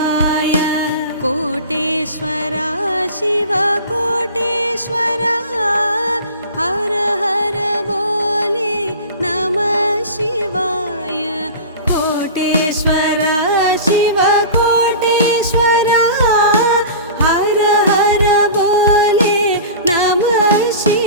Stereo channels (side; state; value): both; inverted; correlation -0.35